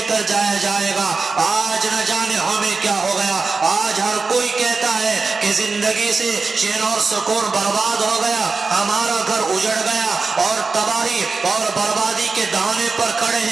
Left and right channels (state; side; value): quieter; left; 4.3 dB